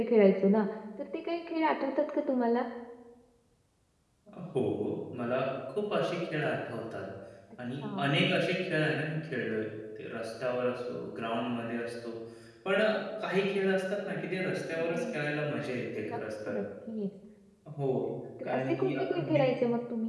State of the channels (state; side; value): identical; both; correlation 1.00